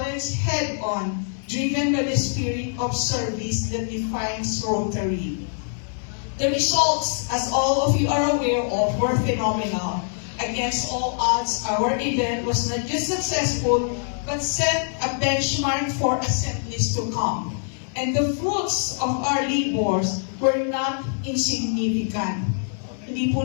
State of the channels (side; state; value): right; silent; digital silence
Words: head-on, driven by the spirit of service that defines Rotary. The results, as all of you are aware of, were phenomenal. Against all odds, our event was not just successful, but set a benchmark for assemblies to come. And the fruits of our labors were not insignificant. Hindi po